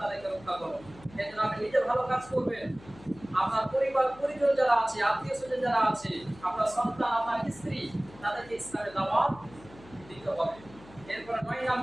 রক্ষা করো। এজন্য আপনি নিজে ভালো কাজ করবেন, আপনার পরিবার পরিজন যারা আছে, আত্মীয় স্বজন যারা আছে, আপনার সন্তান, আপনার স্ত্রী, তাদেরকে ইসলামের দাওয়াত দিতে হবে। এরপর 9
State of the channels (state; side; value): noise; left; hum, 21 dB below the sound